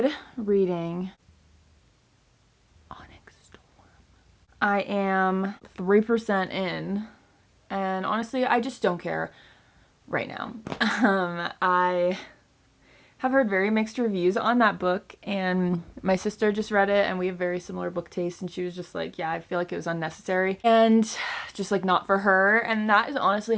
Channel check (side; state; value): both; identical; correlation 1.00